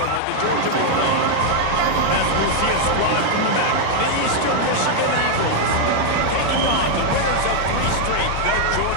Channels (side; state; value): both; different; correlation 0.00